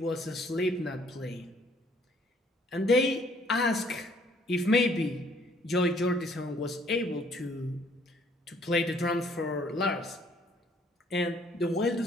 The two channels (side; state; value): both; normal; correlation 0.62